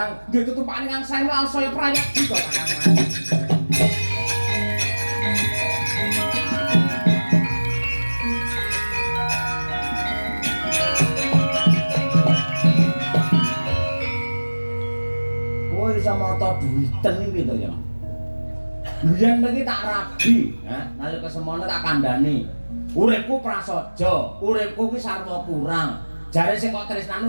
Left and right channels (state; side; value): inverted; both; correlation -1.00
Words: duwe tutupan ingkang sae lan saya prayogi to Kakang Mas. Kowe iso mata duwiten iki to ya. Biyen mriki tak rabi, nalika semono tak kandhani. Uripku prasaja, uripku ki sarwa kurang. Jare sing kok